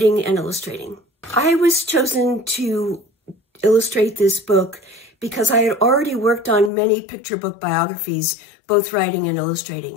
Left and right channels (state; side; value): drops out; right; at 6.7 s